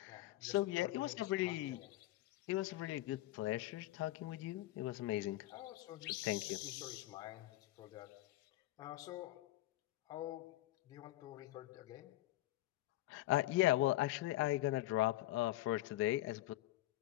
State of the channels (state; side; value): quieter; right; 16.4 dB